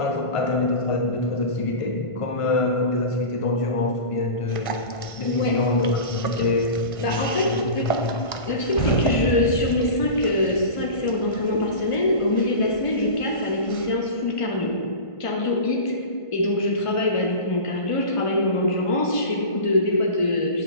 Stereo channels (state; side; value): late; right; 1.5 ms